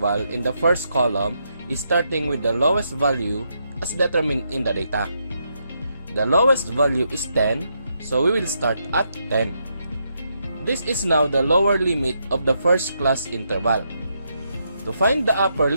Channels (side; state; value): both; inverted; correlation -0.79